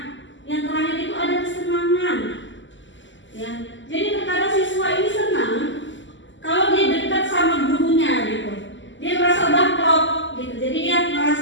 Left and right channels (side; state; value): right; late; 0.54 ms